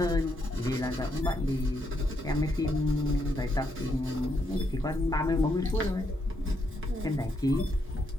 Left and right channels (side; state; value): both; normal; correlation 0.78